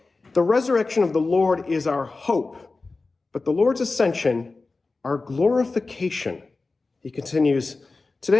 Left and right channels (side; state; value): right; quieter; 3.7 dB